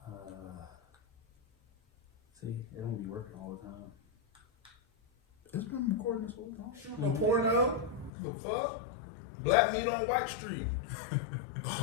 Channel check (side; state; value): right; drops out; at 8.1 s